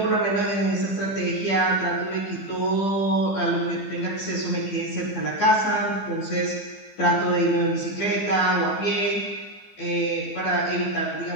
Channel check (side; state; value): right; late; 15 ms